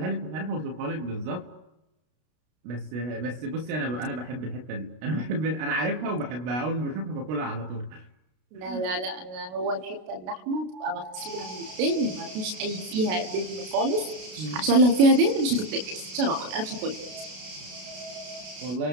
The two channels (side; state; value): left; late; 32 ms